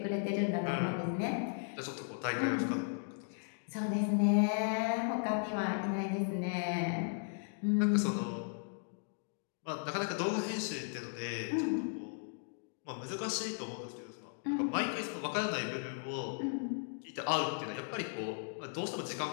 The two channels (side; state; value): right; silent; digital silence